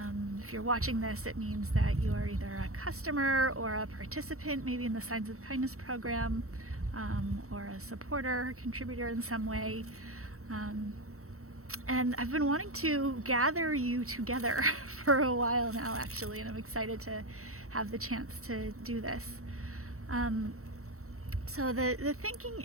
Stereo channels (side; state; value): left; late; 0.64 ms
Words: If you're watching this, it means that you are either a customer or a participant, maybe in the Signs of Kindness program, or a supporter, contributor in some way. And I've been wanting to gather you together for a while now, actually, and I'm excited to have the chance to do this. So the thinking